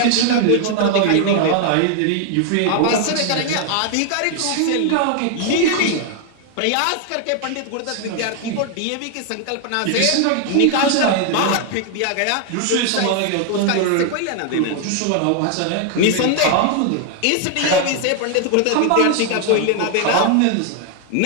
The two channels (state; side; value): different; both; correlation 0.00